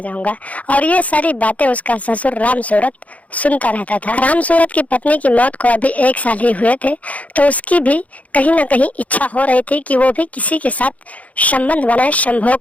और ये सारी बातें उसका ससुर राम सूरत सुनता रहता था। राम सूरत की पत्नी की मौत को अभी 1 साल ही हुए थे, तो उसकी भी कहीं ना कहीं इच्छा हो रही थी कि वो भी किसी के साथ संबंध बनाए, संभोग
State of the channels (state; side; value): late; right; 0.069 ms